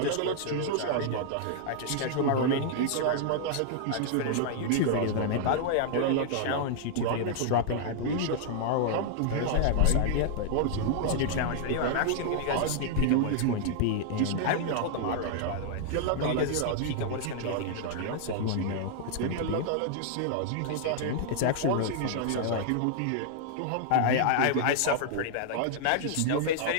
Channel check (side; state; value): both; different; correlation -0.01